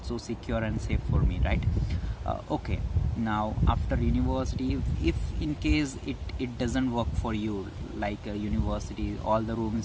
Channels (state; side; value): identical; both; correlation 1.00